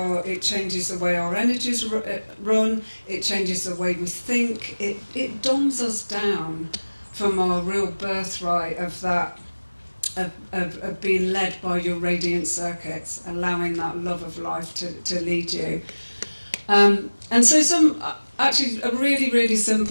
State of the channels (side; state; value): both; inverted; correlation -1.00